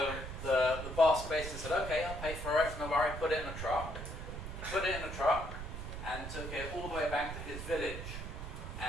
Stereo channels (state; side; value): noise; right; rumble, 7 dB below the sound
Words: the boss basically said, okay, I'll pay for it, no worry, put it in a truck. He put it in a truck and took it all the way back to his village.